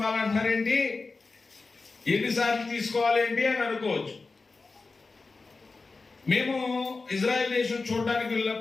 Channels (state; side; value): quieter; right; 3.9 dB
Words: ఎన్నిసార్లు తీసుకోవాలేంటి అని అనుకోవచ్చు. మేము ఇజ్రాయెల్ దేశం చూడడానికి